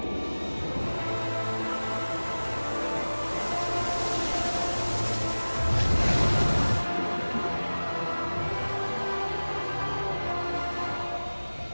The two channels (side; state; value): both; inverted; correlation -1.00